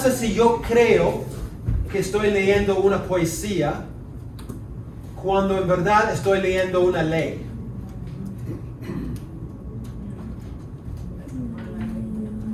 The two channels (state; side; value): identical; both; correlation 1.00